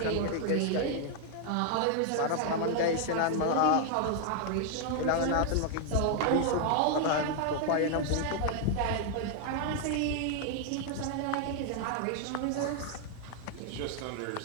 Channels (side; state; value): both; different; correlation 0.00